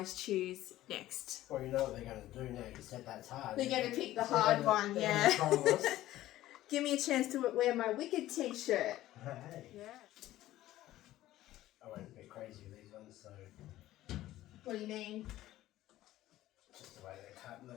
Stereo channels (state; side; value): quieter; right; 14.9 dB